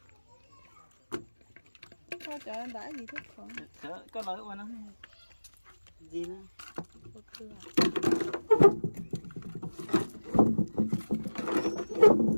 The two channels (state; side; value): inverted; both; correlation -1.00